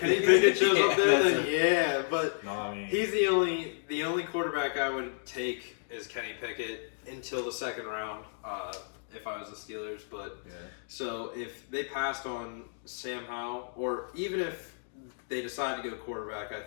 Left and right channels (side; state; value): right; silent; digital silence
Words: Pickett shows up there, That's then yeah. But No, I mean, he's the only quarterback I would take is Kenny Pickett until the second round. If I was the Steelers, but yeah. so if they passed on Sam Howell, or even if they decide to go quarterback, I